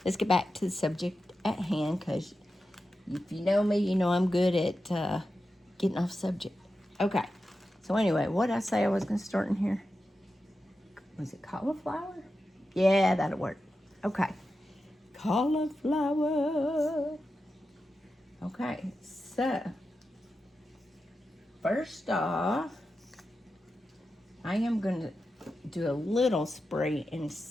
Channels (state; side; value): normal; both; correlation 0.91